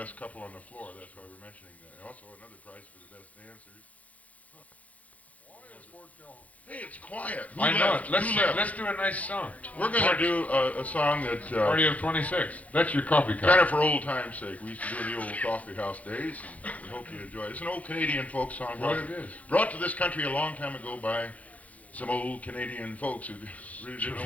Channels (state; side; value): late; right; 0.069 ms